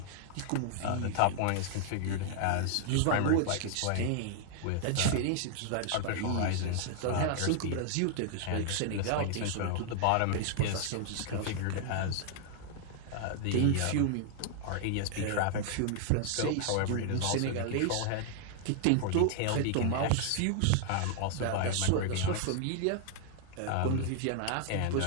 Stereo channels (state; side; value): different; both; correlation 0.00